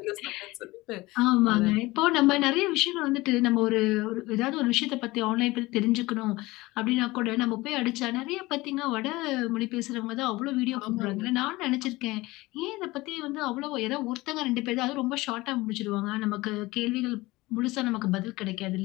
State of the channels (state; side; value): quieter; right; 20.4 dB